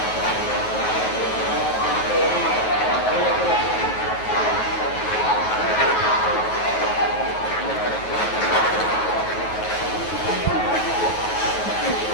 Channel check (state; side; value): late; right; 9.3 ms